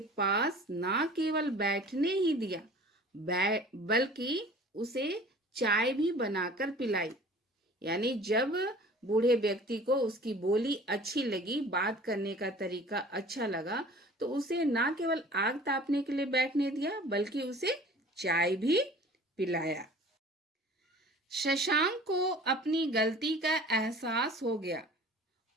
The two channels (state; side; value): normal; both; correlation 0.45